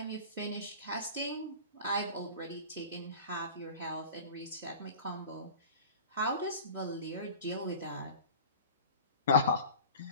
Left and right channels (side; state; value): both; inverted; correlation -0.38